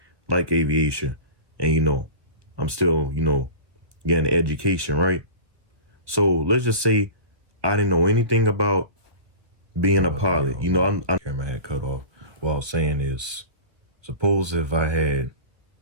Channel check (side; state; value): left; late; 1.5 ms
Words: aviation, and, you know, I'm still, you know, getting education, right? So let's just say I didn't know anything about being a pilot. You know, I'm camera had cut off. What I was saying is, suppose if I had